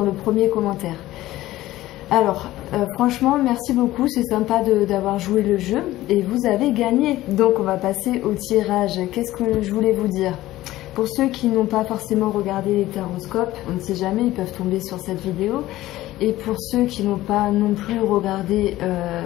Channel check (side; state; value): right; quieter; 15.9 dB